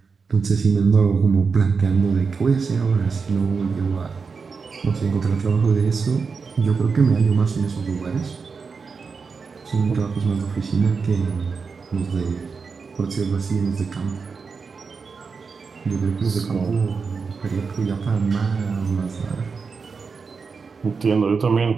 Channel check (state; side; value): quieter; left; 5.1 dB